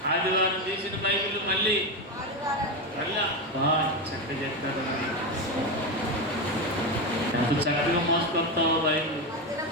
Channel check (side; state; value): both; normal; correlation 0.14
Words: ఆదివారం తీసిన బైబిల్ మళ్ళీ చక్కగా చెప్తారు. ఎంత చక్కగా మోసుకొస్తావో బైబిల్.